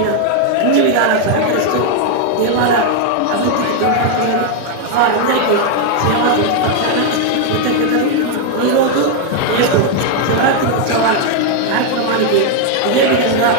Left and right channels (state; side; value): different; both; correlation 0.00